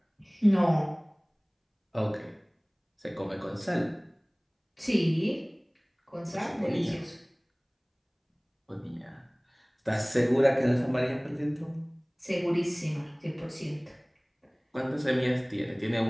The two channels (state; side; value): identical; both; correlation 1.00